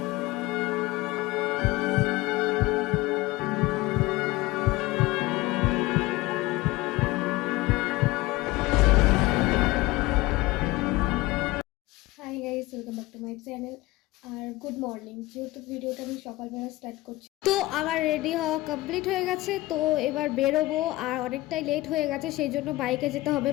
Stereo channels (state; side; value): quieter; right; 19.6 dB